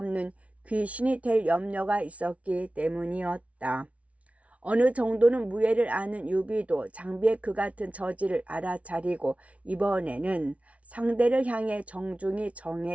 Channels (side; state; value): left; late; 0.065 ms